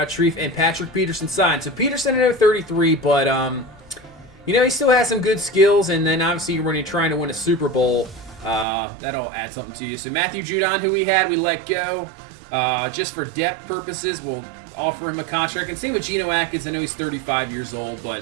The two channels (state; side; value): drops out; left; at 8.7 s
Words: Shreve, and Patrick Peterson signed. So Peterson, I know 33, but he still has some good skills. And then obviously when you're trying to win a Super Bowl, that'll add something to you. So Matthew Judon, who we let go, just for depth purposes, we'll offer him a contract. And same with Geno Atkins. I know he's 35 years old,